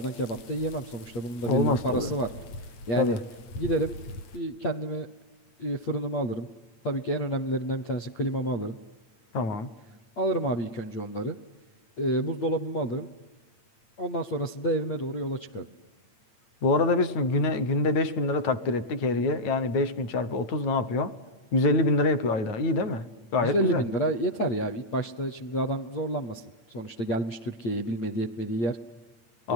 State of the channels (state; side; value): late; right; 8.8 ms